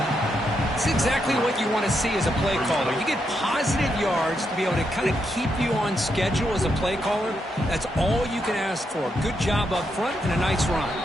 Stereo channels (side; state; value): both; normal; correlation 0.81